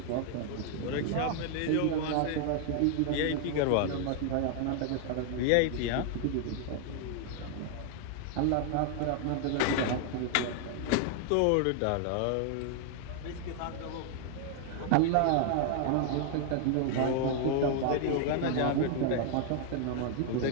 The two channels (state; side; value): different; both; correlation 0.00